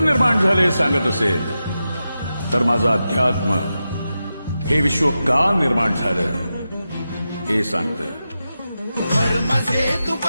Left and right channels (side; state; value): both; inverted; correlation -0.90